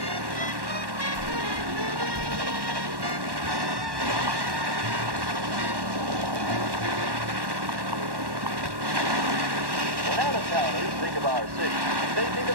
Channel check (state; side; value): late; left; 1.1 ms